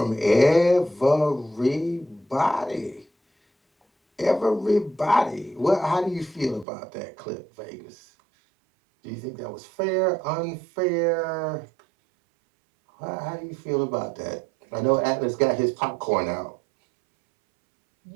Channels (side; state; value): left; drops out; at 6.7 s